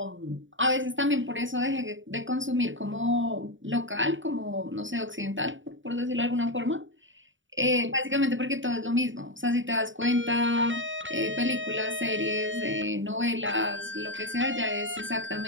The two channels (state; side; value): late; left; 0.56 ms